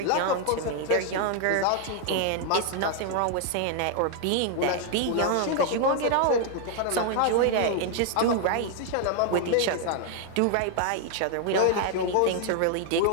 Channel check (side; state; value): both; different; correlation 0.00